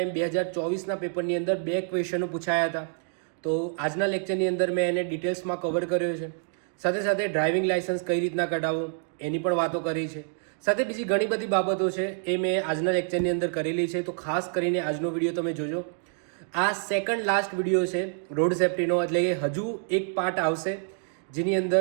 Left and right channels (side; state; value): left; silent; 60 dB below the other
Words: 2024ના પેપરની અંદર 2 ક્વેશ્ચનો પૂછાયા હતા. તો આજના લેક્ચરની અંદર મેં એને ડિટેલ્સમાં કવર કર્યો છે. સાથે સાથે ડ્રાઇવિંગ લાયસન્સ કઈ રીતના કઢાવવું એની પણ વાતો કરી છે. સાથે બીજી ઘણી બધી બાબતો છે એ મેં આજના લેક્ચરની અંદર કરેલી છે. તો ખાસ કરીને આજનો વિડીયો તમે જોજો. આ સેકન્ડ લાસ્ટ વિડીયો છે રોડ સેફ્ટીનો, એટલે કે હજુ એક પાર્ટ આવશે જેની અંદર